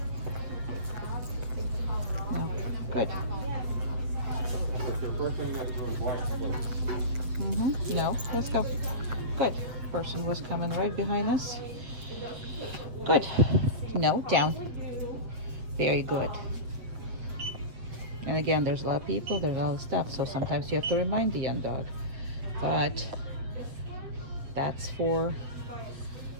No. Good. Mm-hmm. No. Let's go. Good. Person was coming right behind us. Good. No, down. Very good. And again, there's a lot of people, there's a lot of stuff, so sometimes you have to remind the young dog. But that's for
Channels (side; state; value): left; late; 7.9 ms